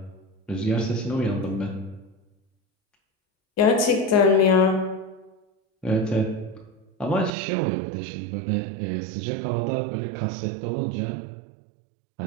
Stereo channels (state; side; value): drops out; left; at 7.3 s